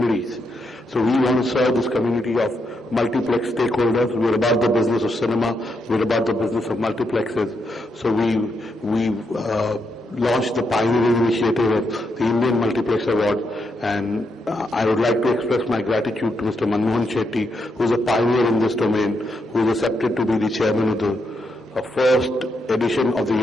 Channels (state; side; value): normal; both; correlation 0.81